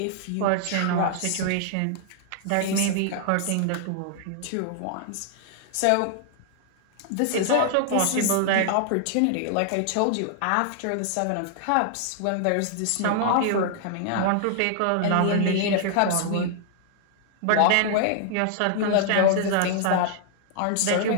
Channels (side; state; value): both; different; correlation -0.01